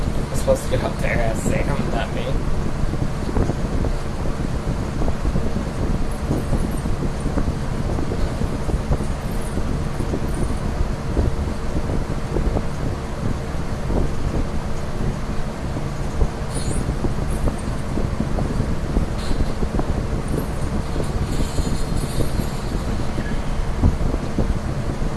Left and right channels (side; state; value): both; identical; correlation 1.00